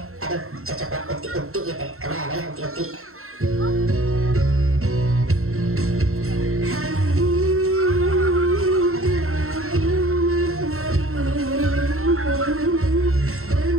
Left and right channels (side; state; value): left; late; 0.62 ms